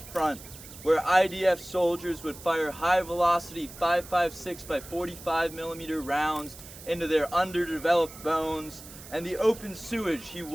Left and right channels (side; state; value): right; noise; hiss, 16 dB below the sound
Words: where IDF soldiers would fire high-velocity 5.56 by 45 millimeter rounds into their underdeveloped bones, and the open sewage he